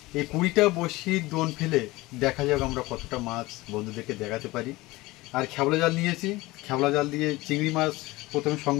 এই 20টা বড়শির দোন ফেলে দেখা যাক আমরা কতটা মাছ বন্ধুদেরকে দেখাতে পারি। আর খেবলা জাল নিয়েছি, খেবলা জাল দিয়ে চিংড়ি মাছ প্রথমে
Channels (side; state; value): right; quieter; 20.3 dB